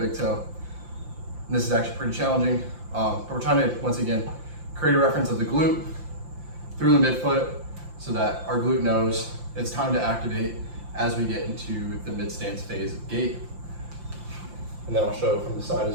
big toe. And this is actually pretty challenging, but we're trying to, once again, create a reference of the glute through the midfoot so that our glute knows it's time to activate as we get into the mid-stance phase of gait. And then I'll show from the side as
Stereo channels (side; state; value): left; late; 5.8 ms